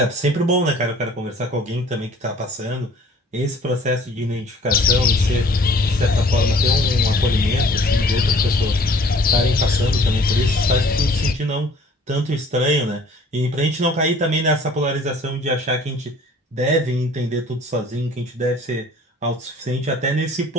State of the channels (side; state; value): both; normal; correlation 0.53